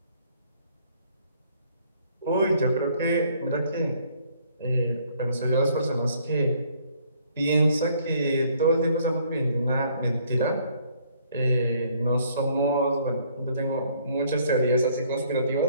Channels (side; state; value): both; inverted; correlation -0.63